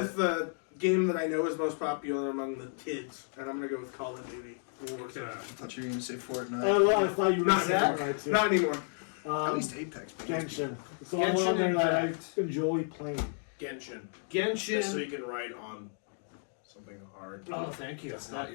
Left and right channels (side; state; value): right; silent; 56 dB below the other